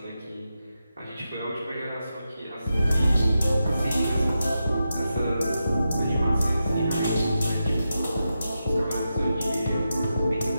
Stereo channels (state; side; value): inverted; both; correlation -0.89